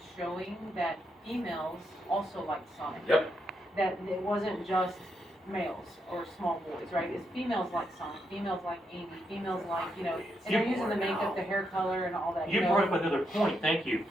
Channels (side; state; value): both; normal; correlation 0.80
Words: showing that females also like Sonic. Yep. That it wasn't just males or small boys, right? It's females like Sonic, females like Amy, females like, you know, and they're using the makeup, the hair color, and all that. You know? brought up another point. Thank you.